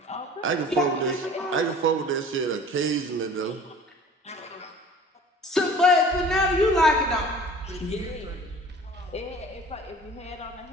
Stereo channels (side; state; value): both; normal; correlation 0.45